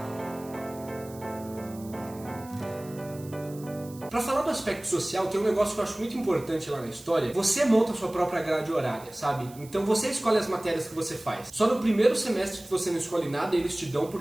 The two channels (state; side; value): noise; right; hiss, 21 dB below the sound